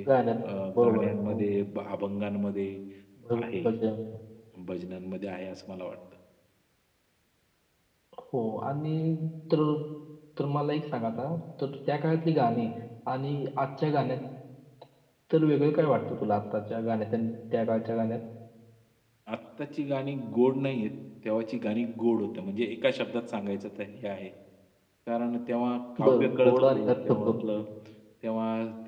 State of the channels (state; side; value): identical; both; correlation 1.00